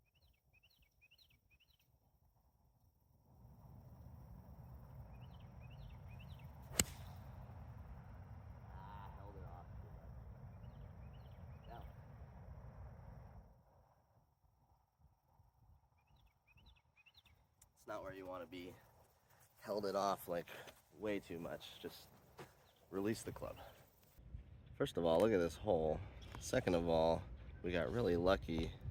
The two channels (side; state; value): both; identical; correlation 1.00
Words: Not where you want to be. Held it off like way too much. Just release the club. First of all, look at this hole. Second of all, we got really lucky